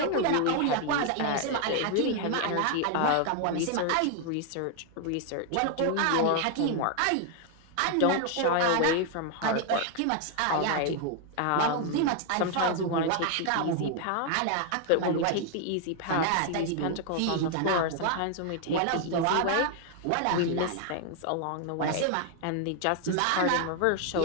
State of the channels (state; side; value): different; both; correlation 0.00